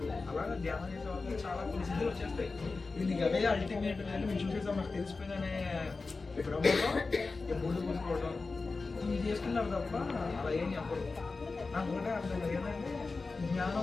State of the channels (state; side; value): quieter; right; 3.9 dB